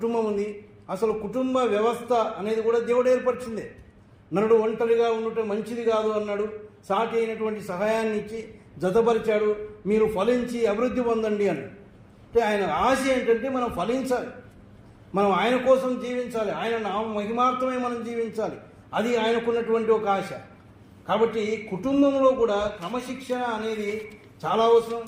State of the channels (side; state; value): both; identical; correlation 1.00